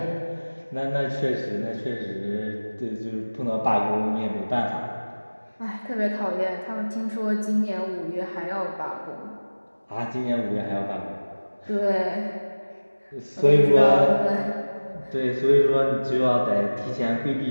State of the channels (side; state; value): both; inverted; correlation -1.00